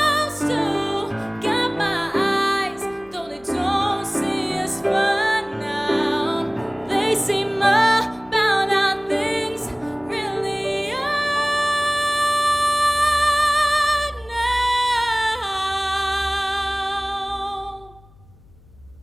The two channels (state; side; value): noise; left; hum, 26 dB below the sound